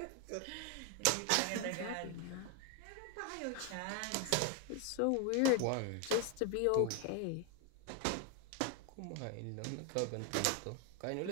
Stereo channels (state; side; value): different; both; correlation 0.01